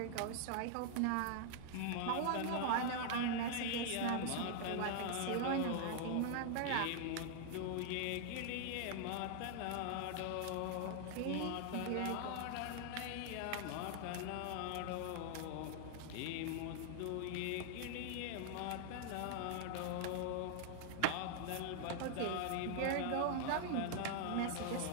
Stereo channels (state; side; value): different; both; correlation 0.00